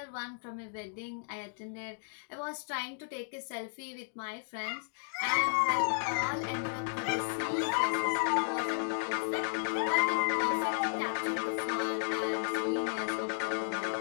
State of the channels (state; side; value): silent; right; digital silence